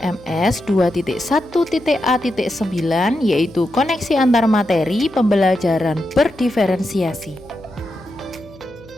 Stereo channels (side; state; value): left; noise; hum, 23 dB below the sound